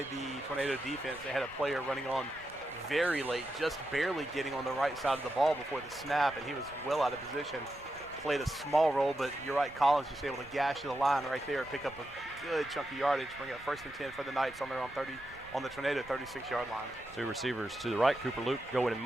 the Tornado defense. They had a player running on very late, just barely getting on the right side of the ball before the snap, and he was well out of position. Played a small role, but you're right, Collins just able to gash to the line right there, pick up a good chunk of yardage, bring up first and 10 for the Knights on their own on the Tornado 36-yard line. Two receivers to the right. Cooper Luke going in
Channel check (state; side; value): noise; right; rumble, 21 dB below the sound